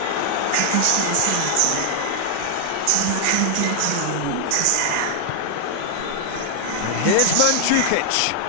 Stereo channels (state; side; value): different; both; correlation 0.00